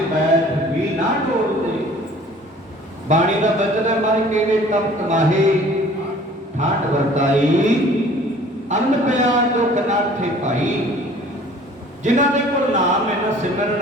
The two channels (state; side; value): normal; both; correlation 0.50